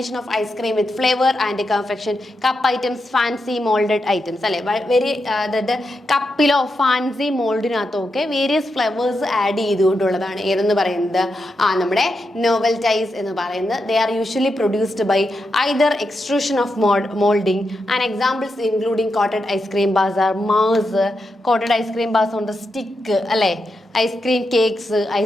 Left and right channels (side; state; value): both; normal; correlation 0.86